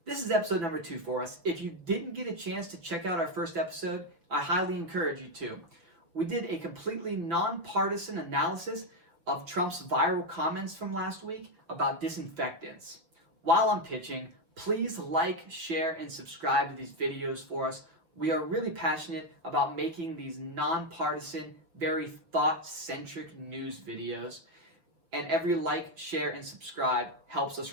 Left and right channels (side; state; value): left; late; 6.4 ms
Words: This is episode number 2 for us. If you didn't get a chance to check out our first episode, I highly encourage you to. We did a completely nonpartisan analysis of Trump's viral comments from last week about disinfectants. While I'm pitching, please like, share, and subscribe to these videos for us. We are really passionate about making these nonpartisan, very thought-centric news videos. And every like, share, and subscribe helps us